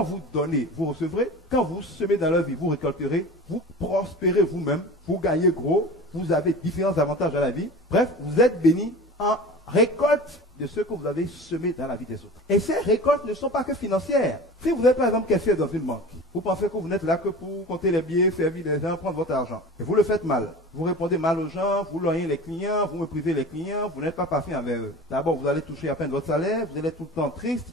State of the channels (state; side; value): normal; both; correlation 0.36